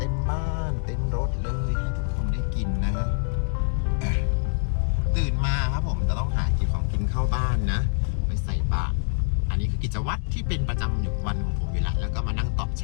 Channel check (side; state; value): right; silent; digital silence